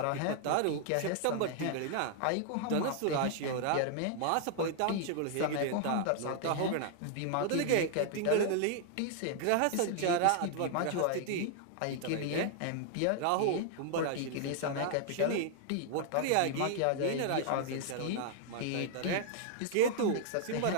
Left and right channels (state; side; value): different; both; correlation 0.00